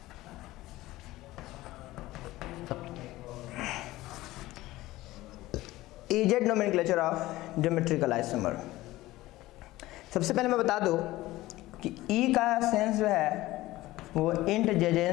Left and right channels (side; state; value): right; quieter; 17.5 dB